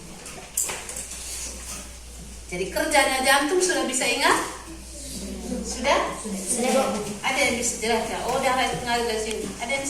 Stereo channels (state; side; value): identical; both; correlation 1.00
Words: Jadi kerjanya jantung sudah bisa ingat? Sudah? Ada yang bisa jelaskan? Oh, darah itu mengalir dari sini. Ada yang